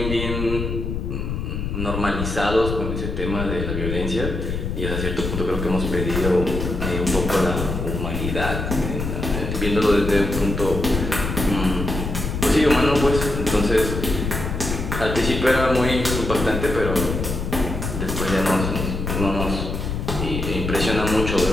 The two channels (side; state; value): left; noise; rumble, 3 dB below the sound